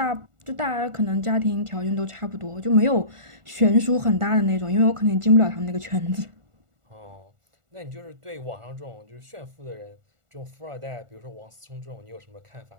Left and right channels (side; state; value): left; late; 1.4 ms